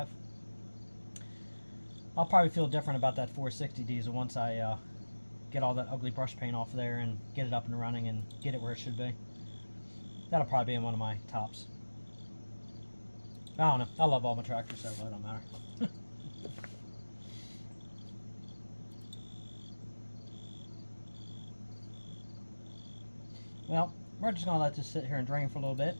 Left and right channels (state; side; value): inverted; both; correlation -1.00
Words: I'll probably feel different about that 460 diesel once I get all that ugly brush paint off there and get it up and running and get it where it should be. That'll probably be in one of my tops. I don't know. I love all my tractors, so it don't matter. Well, we're just going to let this sit here and drain for a little bit,